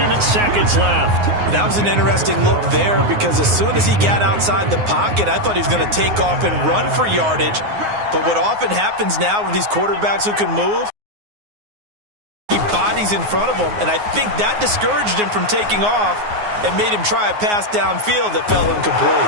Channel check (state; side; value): late; left; 9.6 ms